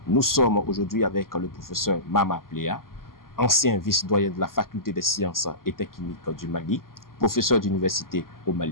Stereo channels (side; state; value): right; late; 0.92 ms